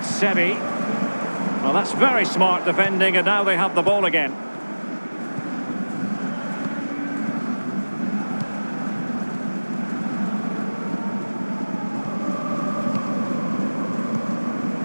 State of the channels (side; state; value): both; inverted; correlation -1.00